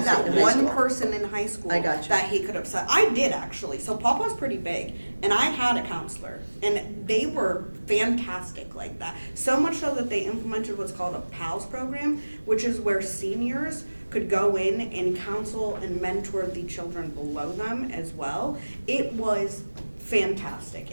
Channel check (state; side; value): inverted; both; correlation -1.00